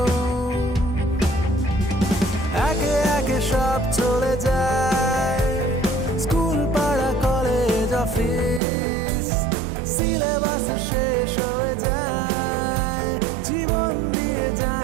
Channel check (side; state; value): left; drops out; at 8.6 s